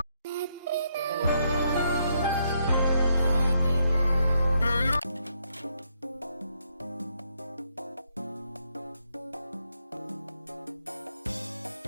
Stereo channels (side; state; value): both; inverted; correlation -0.76